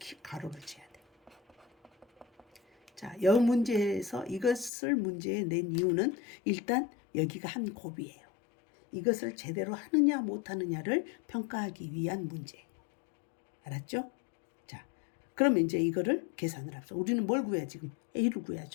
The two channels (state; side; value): drops out; right; at 4.7 s